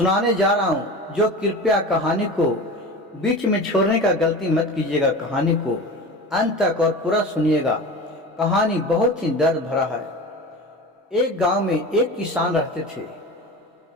जा रहा हूँ, जो कृपया कहानी को बीच में छोड़ने का गलती मत कीजिएगा। कहानी को अंत तक और पूरा सुनिएगा। कहानी बहुत ही दर्द भरा है। एक गांव में एक किसान रहते थे।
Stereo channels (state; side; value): normal; both; correlation 0.32